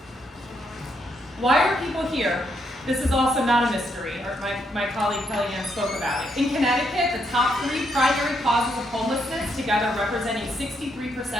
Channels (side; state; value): both; normal; correlation 0.77